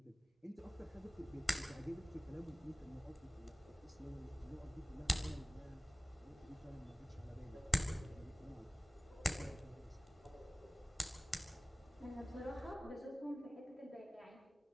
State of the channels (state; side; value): normal; both; correlation 0.96